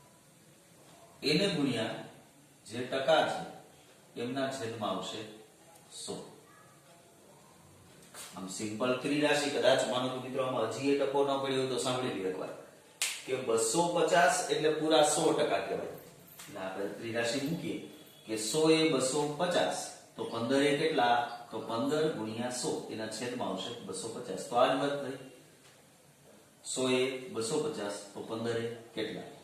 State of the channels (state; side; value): identical; both; correlation 1.00